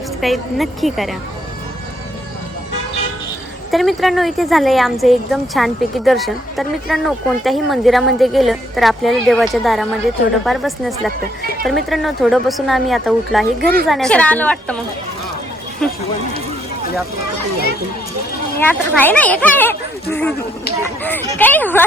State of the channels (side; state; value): both; normal; correlation 0.71